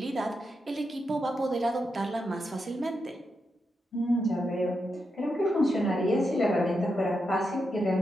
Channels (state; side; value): normal; both; correlation 0.85